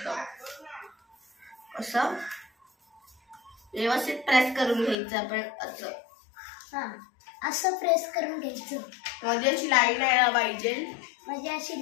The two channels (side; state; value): right; drops out; at 5.0 s